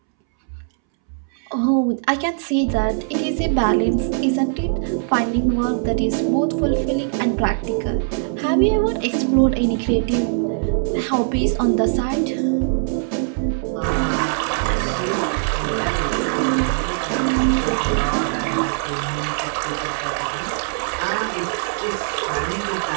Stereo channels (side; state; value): left; silent; 65 dB below the other